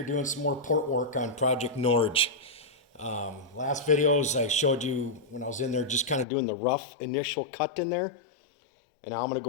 doing some more port work on Project Norge. Last videos I showed you when I was in there just kind of doing the rough initial cut in there. And now I'm going to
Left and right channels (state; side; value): drops out; right; at 6.2 s